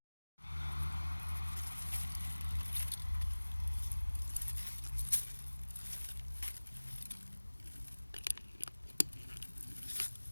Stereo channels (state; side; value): inverted; both; correlation -1.00